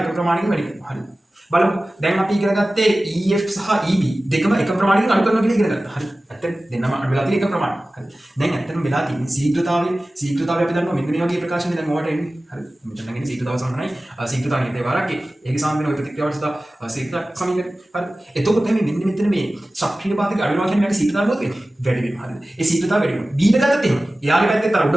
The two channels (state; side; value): normal; both; correlation 0.96